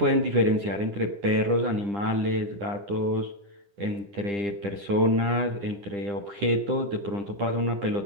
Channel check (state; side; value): late; left; 10 ms